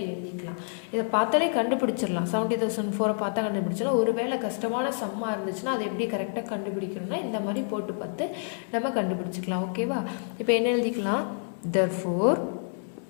எழுதிக்கலாம். இதை பார்த்தாலே கண்டுபிடிச்சிடலாம். 70,004 பார்த்தா கண்டுபிடிச்சிடலாம். ஒருவேளை கஷ்டமான சம்மாக இருந்துச்சுன்னா அதை எப்படி கரெக்டாக கண்டுபிடிக்கணும்னா இந்த மாதிரி போட்டு பார்த்து நம்ம கண்டுபிடிச்சிக்கலாம். ஓகேவா? இப்போ என்ன எழுதிக்கலாம்? therefore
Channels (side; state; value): right; silent; 59 dB below the other